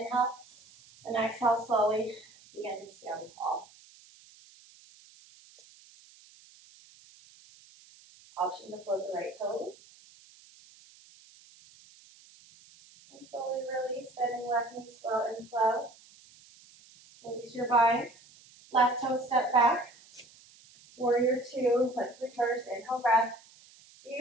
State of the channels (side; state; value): right; noise; hiss, 25 dB below the sound